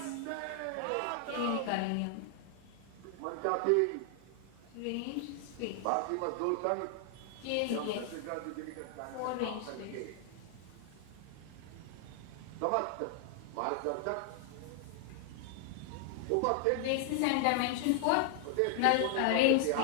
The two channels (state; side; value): different; both; correlation 0.00